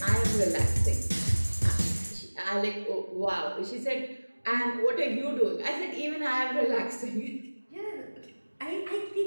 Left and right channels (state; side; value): inverted; both; correlation -1.00